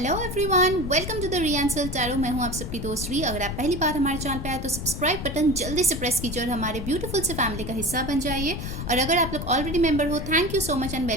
everyone, welcome to the रियांसल tarot. मैं हूं आप सबकी दोस्त री। अगर आप पहली बार हमारे चैनल पे आए तो सब्सक्राइब बटन जल्दी से प्रेस कीजिए और हमारे ब्यूटीफुल से फैमिली का हिस्सा बन जाइए। और अगर आप लोग ऑलरेडी मेंबर हो, thank you so much and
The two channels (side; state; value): left; noise; rumble, 6 dB below the sound